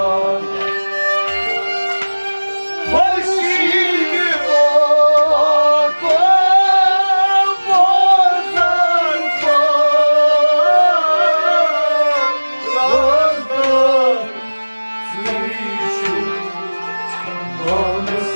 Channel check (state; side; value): inverted; both; correlation -1.00